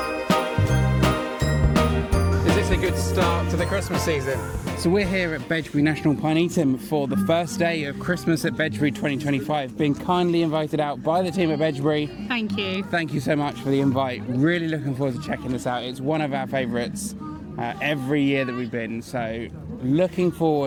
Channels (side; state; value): both; identical; correlation 1.00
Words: Is this a good start to the Christmas season? So we're here at Bedgebury National Pinetum for the first day of Christmas at Bedgebury 2025, being kindly invited out by the team at Bedgebury. Thank you. Thank you so much for the invite. Really looking forward to checking this out. It's one of our favourites every year that we've been, so looking